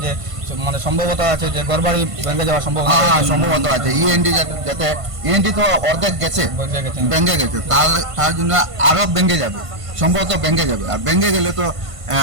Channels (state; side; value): late; left; 1.5 ms